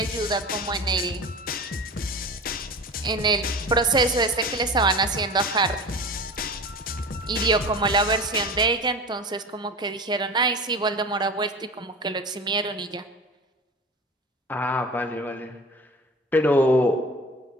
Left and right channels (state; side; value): normal; both; correlation 0.34